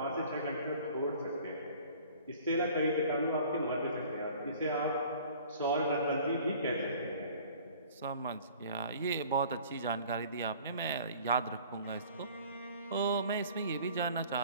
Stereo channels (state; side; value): inverted; both; correlation -0.49